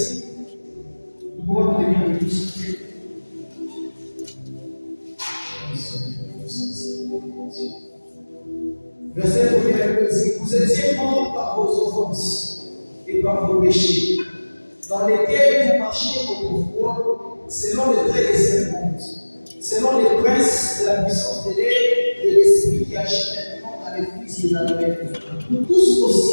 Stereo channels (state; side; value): inverted; both; correlation -1.00